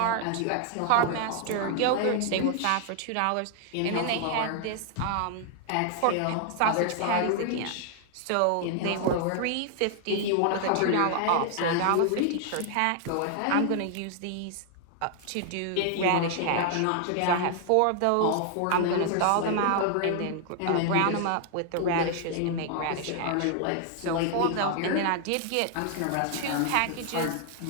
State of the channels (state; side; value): different; both; correlation 0.00